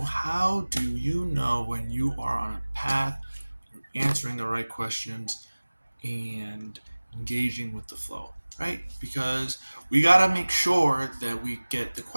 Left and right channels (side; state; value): both; inverted; correlation -1.00